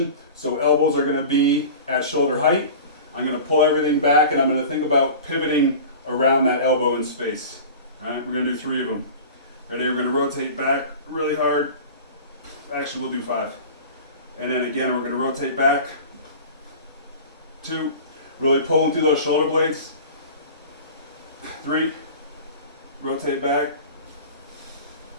So elbows are gonna be at shoulder height. I'm gonna pull everything back and I'm gonna think about pivoting around that elbow in space. All right, we're gonna do 3 of them. Ready, we're gonna rotate back really hard. Actually, we'll do 5. And then again, we're gonna rotate back. 2, really pulling through those shoulder blades. 3, rotate back.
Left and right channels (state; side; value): inverted; both; correlation -0.37